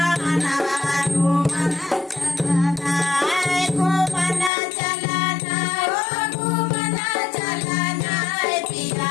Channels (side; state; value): right; drops out; at 4.5 s